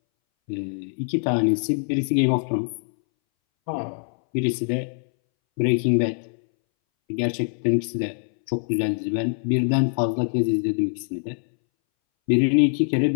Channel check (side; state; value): right; silent; 62 dB below the other